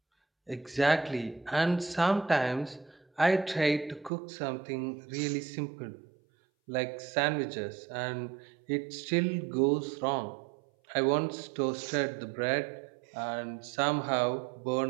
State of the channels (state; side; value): drops out; left; at 4.1 s